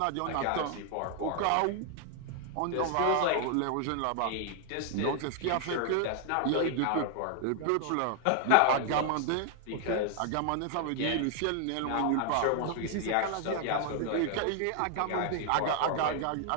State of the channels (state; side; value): different; both; correlation 0.00